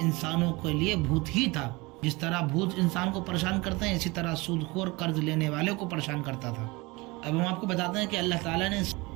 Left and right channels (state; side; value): quieter; left; 24.0 dB